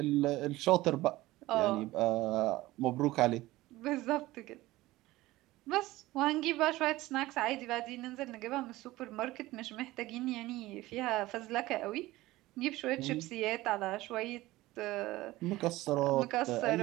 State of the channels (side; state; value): left; quieter; 18.1 dB